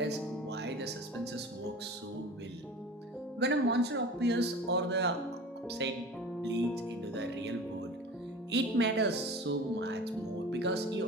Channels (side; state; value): both; normal; correlation 0.37